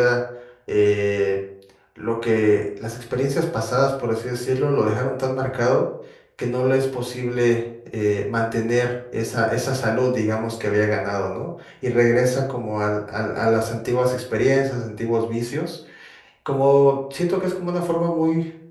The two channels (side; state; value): both; identical; correlation 1.00